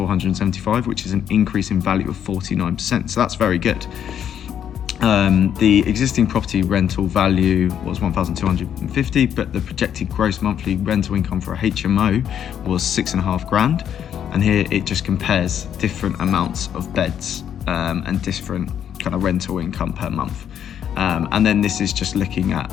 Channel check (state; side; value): quieter; right; 9.3 dB